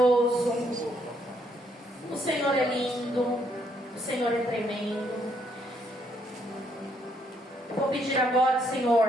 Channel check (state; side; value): normal; both; correlation 0.72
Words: o Senhor é lindo, o Senhor é tremendo. Eu vou pedir agora,